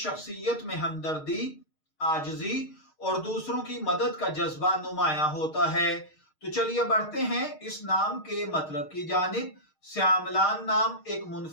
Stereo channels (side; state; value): right; late; 6.5 ms